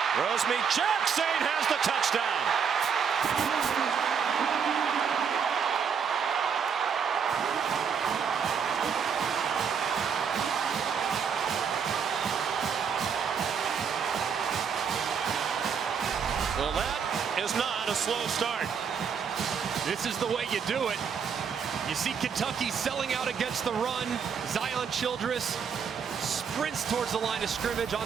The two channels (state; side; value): quieter; left; 6.7 dB